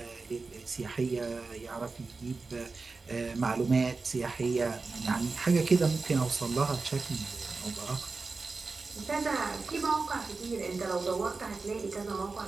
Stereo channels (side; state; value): left; quieter; 4.1 dB